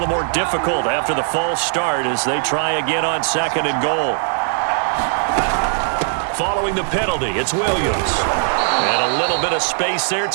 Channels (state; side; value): silent; left; digital silence